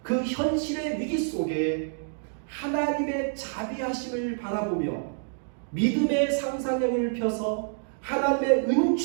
그 현실의 위기 속에 하나님의 자비하심을 바라보며 믿음의 상상력을 펴서 하나님의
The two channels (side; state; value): left; silent; digital silence